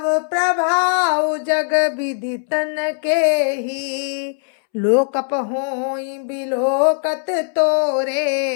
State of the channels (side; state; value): right; silent; 66 dB below the other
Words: प्रभाव जग विदितन के ही। लोकप होई बिलोकत